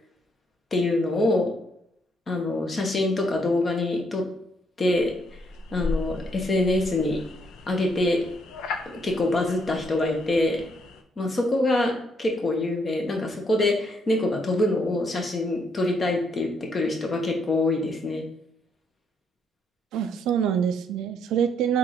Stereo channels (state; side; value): normal; both; correlation 0.73